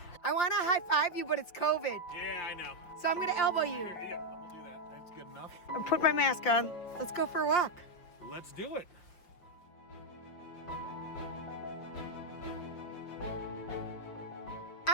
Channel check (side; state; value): right; late; 5.6 ms